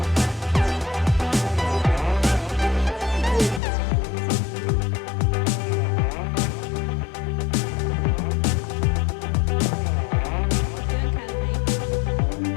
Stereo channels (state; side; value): drops out; right; at 3.6 s